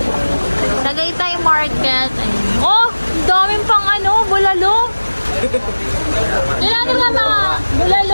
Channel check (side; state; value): both; inverted; correlation -1.00